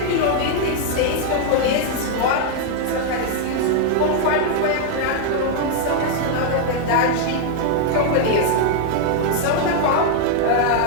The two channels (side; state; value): both; different; correlation 0.00